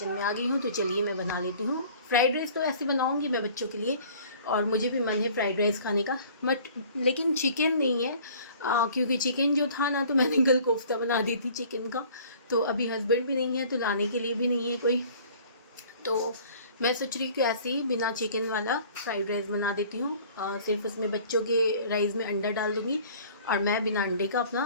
में आ गई हूँ। तो चलिए मैं बना लेती हूँ फ्राइड राइस। तो ऐसे बनाऊँगी मैं बच्चों के लिए, और मुझे भी मन है फ्राइड राइस खाने का, बट लेकिन चिकन नहीं है, क्योंकि चिकन जो था ना, तो मैंने कल कोफ्ता बना दी थी चिकन का। तो अभी हस्बैंड भी नहीं है, तो लाने के लिए भी नहीं है कोई। तो मैं सोच रही हूँ कि ऐसे ही बिना चिकन वाला फ्राइड राइस बना देती हूँ, सिर्फ उसमें बच्चों के राइस में अंडा डाल दूँगी और मैं बिना अंडे का अपना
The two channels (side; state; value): both; inverted; correlation -0.50